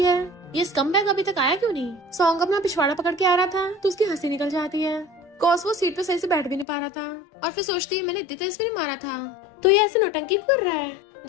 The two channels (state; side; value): drops out; right; at 6.7 s